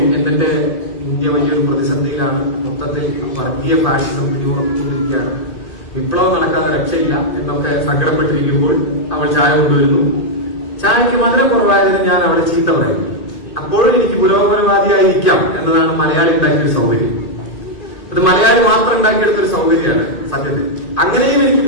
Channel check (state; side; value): late; right; 2.5 ms